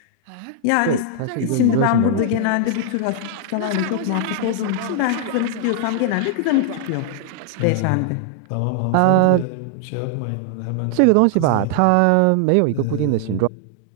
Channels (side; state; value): both; different; correlation -0.01